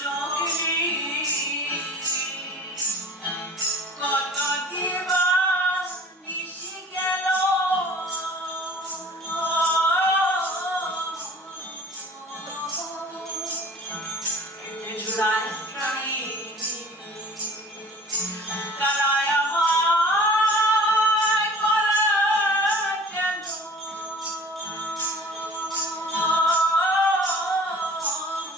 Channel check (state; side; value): normal; both; correlation 0.45